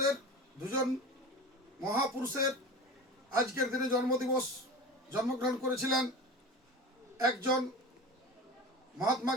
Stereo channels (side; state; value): both; normal; correlation 0.32